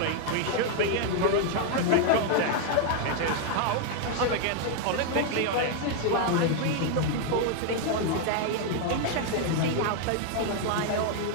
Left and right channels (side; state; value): both; different; correlation 0.00